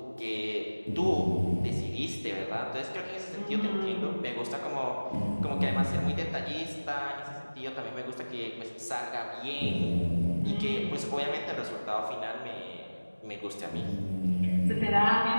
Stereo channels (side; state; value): both; inverted; correlation -1.00